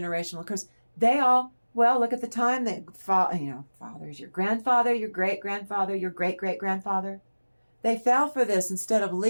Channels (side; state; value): both; inverted; correlation -1.00